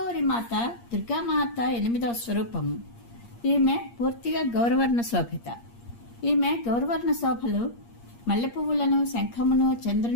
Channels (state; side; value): late; right; 8.5 ms